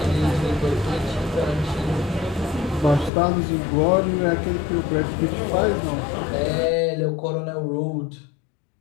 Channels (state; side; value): drops out; right; at 3.1 s